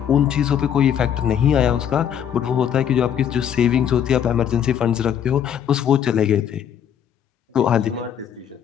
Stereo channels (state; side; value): quieter; right; 9.0 dB